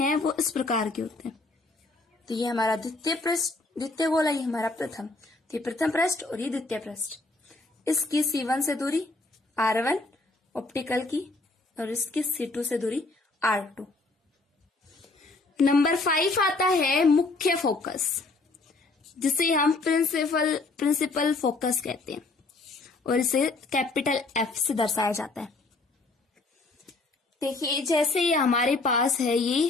वो इस प्रकार के होते हैं। तो ये हमारा द्वितीय पृष्ठ, द्वितीय गोला, ये हमारा प्रथम, तो ये प्रथम पृष्ठ और ये द्वितीय पृष्ठ। इसकी C1 से दूरी R1 ऑप्टिकल की, और इसकी C2 से दूरी R2। नंबर 5 आता है मुख्य फोकस, जिसे हम प्रिंसिपल फोकस कहते हैं, और इसे कैपिटल F से दर्शाया जाता है। देखिए जैसे ये हमारे पास है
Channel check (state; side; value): quieter; right; 3.4 dB